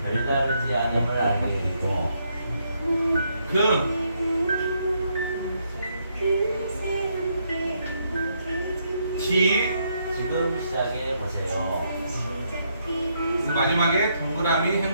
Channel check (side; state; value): both; inverted; correlation -0.75